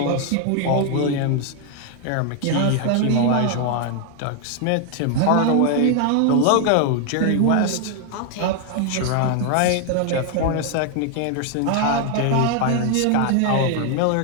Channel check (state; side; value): different; both; correlation 0.00